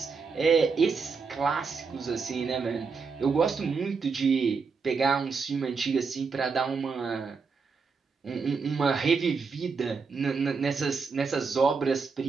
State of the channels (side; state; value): left; quieter; 5.0 dB